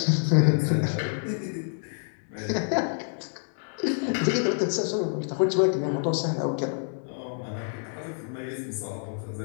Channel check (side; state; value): right; silent; 60 dB below the other